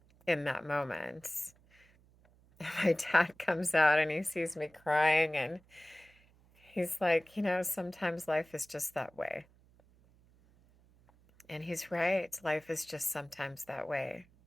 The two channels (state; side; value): noise; right; hum, 30 dB below the sound